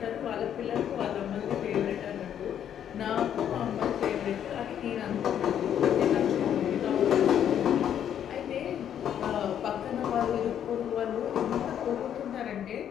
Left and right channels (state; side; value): quieter; right; 9.6 dB